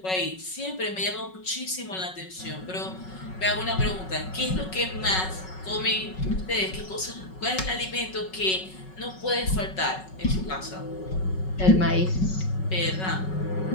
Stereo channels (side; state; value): right; late; 5.4 ms